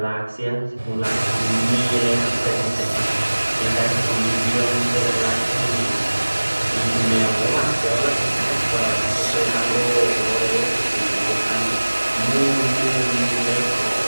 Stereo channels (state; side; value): inverted; both; correlation -1.00